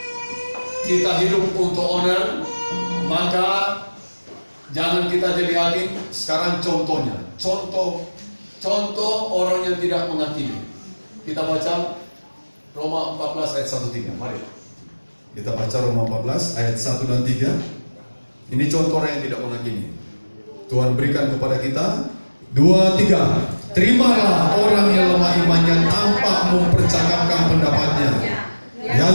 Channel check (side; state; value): both; inverted; correlation -1.00